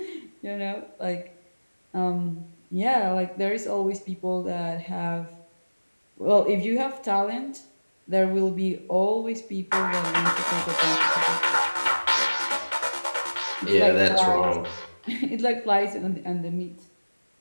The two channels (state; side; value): inverted; both; correlation -1.00